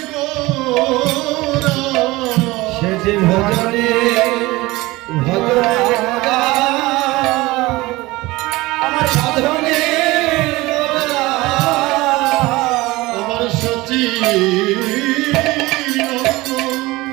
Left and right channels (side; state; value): left; quieter; 20.5 dB